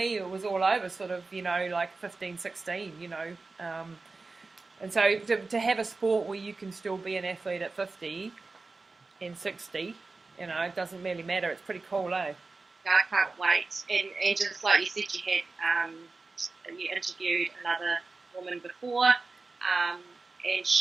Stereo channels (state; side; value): quieter; left; 3.8 dB